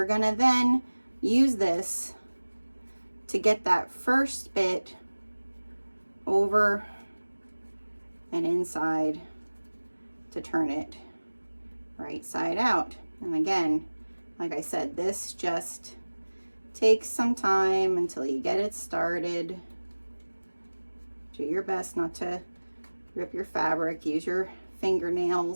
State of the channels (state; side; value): inverted; both; correlation -1.00